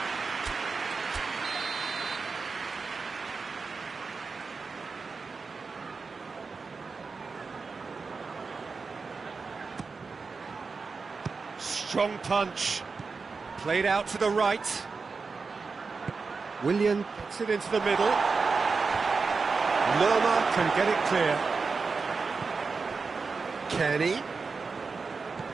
Strong punch. Played out to the right. Willian gets it into the middle. Lerma can get it clear. Kenny.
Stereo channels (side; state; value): left; quieter; 4.6 dB